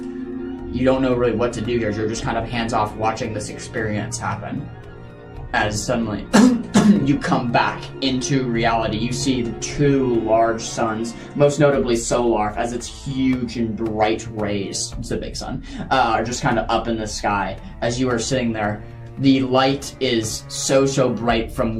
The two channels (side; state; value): both; identical; correlation 1.00